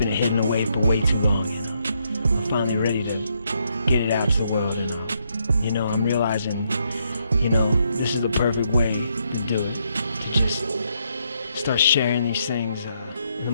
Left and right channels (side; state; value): both; inverted; correlation -0.76